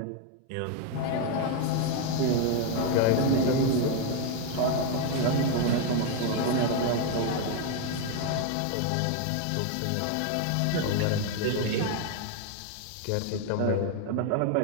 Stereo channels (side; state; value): both; different; correlation 0.01